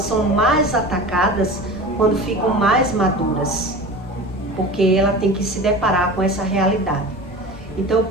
são mais atacadas quando ficam mais maduras, porque ela tem que se deparar com essa realidade. Então eu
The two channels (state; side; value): normal; both; correlation 0.34